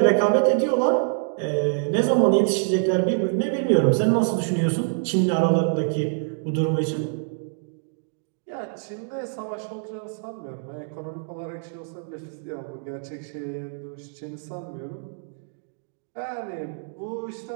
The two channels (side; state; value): left; silent; digital silence